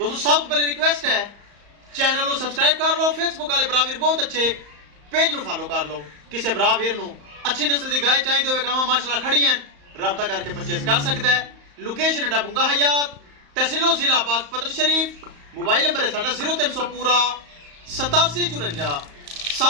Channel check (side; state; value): left; late; 35 ms